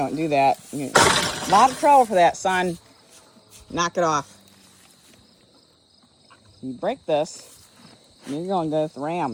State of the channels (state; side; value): identical; both; correlation 1.00